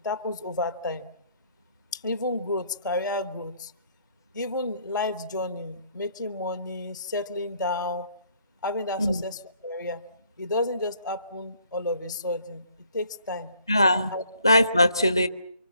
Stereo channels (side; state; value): both; inverted; correlation -0.64